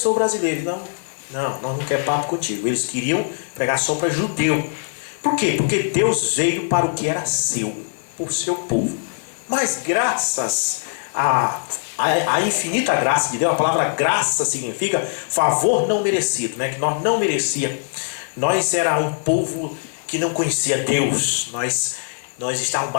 brasileiro. Não, nós não queremos papo contigo. Eles queriam pregar só para judeu. Por quê? Porque Deus veio para o que era seu, por seu povo. Mas graças a infinita graça de Deus, a palavra graça significa favor não merecido, né? Que nós não merecíamos. Nós era um povo que não conhecia Deus. Nós estávamos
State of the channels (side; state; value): right; silent; digital silence